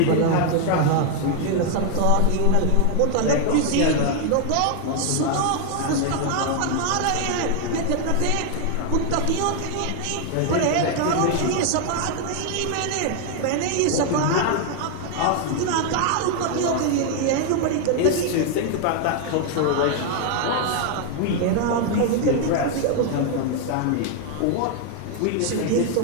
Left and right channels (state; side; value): different; both; correlation 0.00